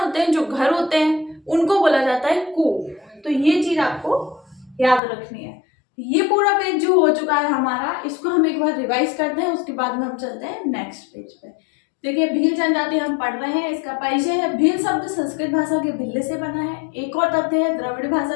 हैं, जो घर होते हैं, उनको बोला जाता है कू। तो ये चीज आपको याद रखनी है। ये पूरा पेज जो हो चुका है हमारा, इसको हम एक बार रिवाइज करते हैं, उसके बाद में हम चलते हैं नेक्स्ट पेज पे। देखिए भील जनजाति हम पढ़ रहे हैं, इसका परिचय है। भील शब्द संस्कृत भाषा के भिल्ल से बना है। एक और तथ्य है, द्रविड़ भाषा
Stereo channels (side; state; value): right; drops out; at 5.0 s